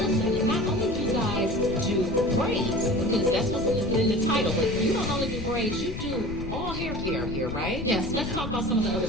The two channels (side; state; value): left; noise; rumble, 8 dB below the sound